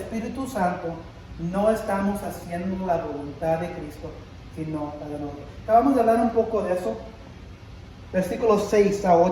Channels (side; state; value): both; identical; correlation 1.00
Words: Santo, no estamos haciendo la voluntad de Cristo, sino la de nosotros. Acabamos de hablar un poco de eso. Versículos 6 a